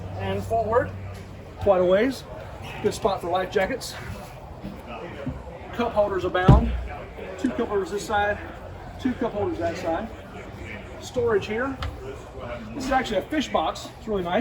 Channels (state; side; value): identical; both; correlation 1.00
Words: and forward quite a ways. Good spot for life jackets. Cup holders abound. 2 cup holders this side, 2 cup holders that side. Storage here. This is actually a fish box. It's really